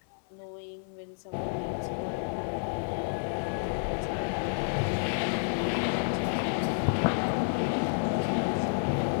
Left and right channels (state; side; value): silent; right; 58 dB below the other